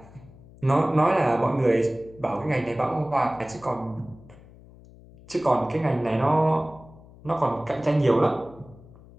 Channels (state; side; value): noise; left; hum, 22 dB below the sound